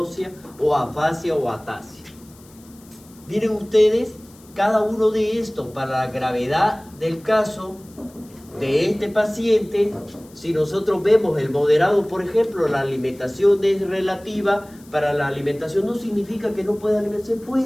o afasia o atasia. Miren ustedes, cada uno de estos para la gravedad del caso de este paciente, si nosotros vemos el moderado, por ejemplo, la alimentación es relativa, para la alimentación no significa que no pueda alimentar, se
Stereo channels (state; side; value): noise; left; hiss, 26 dB below the sound